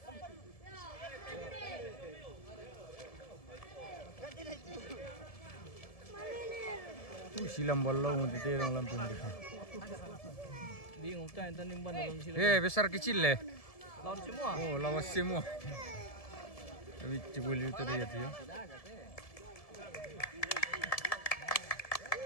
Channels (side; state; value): right; late; 1.7 ms